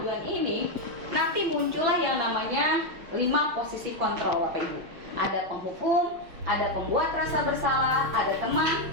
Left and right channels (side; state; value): left; late; 6.0 ms